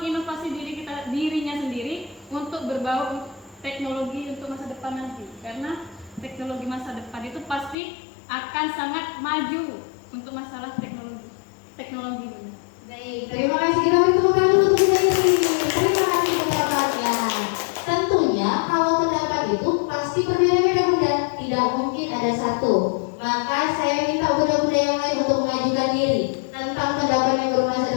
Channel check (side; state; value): right; drops out; at 7.8 s